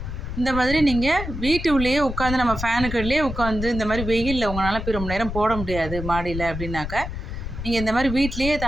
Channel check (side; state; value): left; noise; rumble, 6 dB below the sound